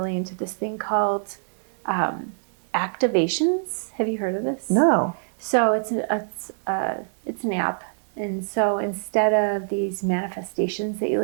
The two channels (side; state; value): left; silent; digital silence